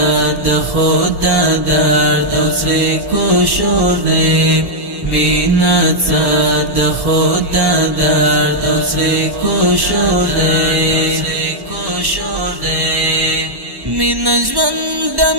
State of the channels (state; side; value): late; left; 1.1 ms